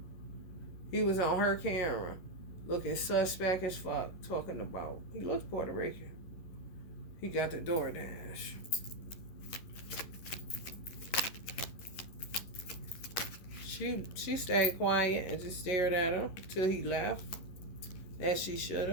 He was on her camera, looking suspect as fuck, talking about. He looks Puerto Rican. He got the DoorDash. She stayed quiet and just stared at him till he left, as she should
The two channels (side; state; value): right; late; 11 ms